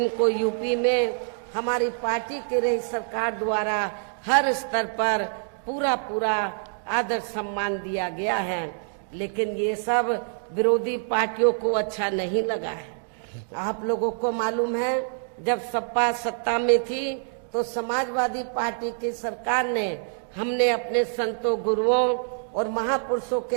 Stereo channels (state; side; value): silent; left; digital silence